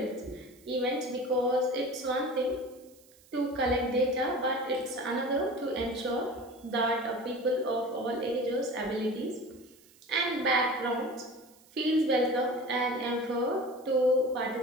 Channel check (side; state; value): right; noise; hiss, 27 dB below the sound